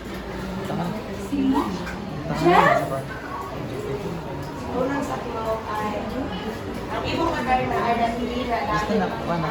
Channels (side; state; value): both; identical; correlation 1.00